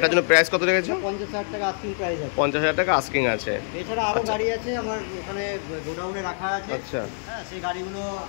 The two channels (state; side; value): silent; right; digital silence